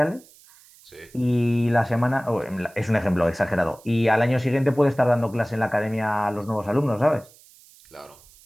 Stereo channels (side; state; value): right; noise; hiss, 26 dB below the sound